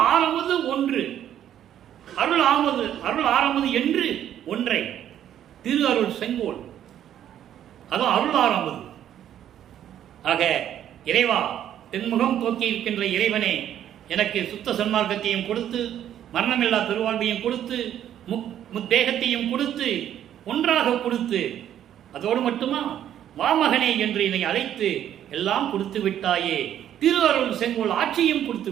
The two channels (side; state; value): left; quieter; 10.7 dB